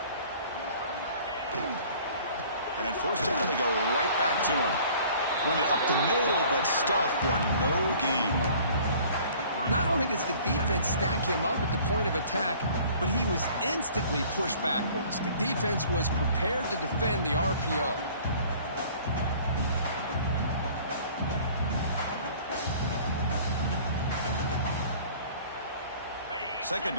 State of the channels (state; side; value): inverted; both; correlation -0.51